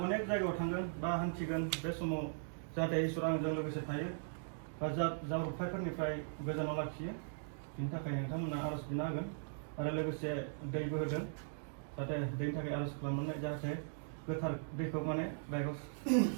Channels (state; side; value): silent; left; digital silence